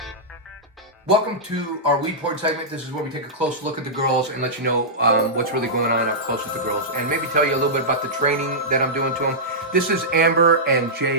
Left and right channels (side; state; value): both; normal; correlation -0.13